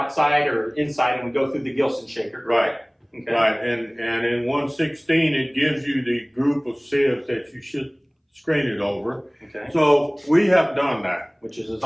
or inside and we go through the Gilson shaker. Right. Okay. Right, and in 116 it gives you the group of sieves that you should screen it over. Okay. So we have done that. Which is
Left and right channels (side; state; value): both; identical; correlation 1.00